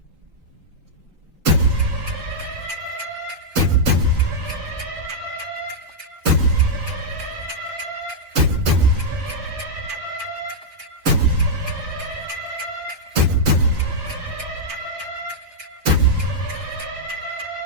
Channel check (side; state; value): left; late; 3.7 ms